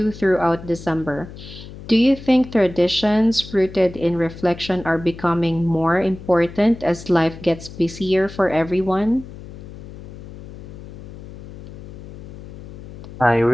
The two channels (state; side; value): noise; left; hum, 14 dB below the sound